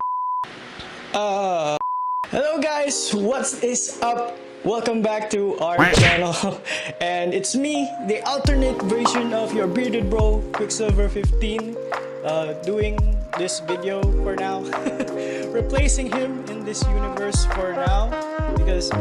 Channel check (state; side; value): identical; both; correlation 1.00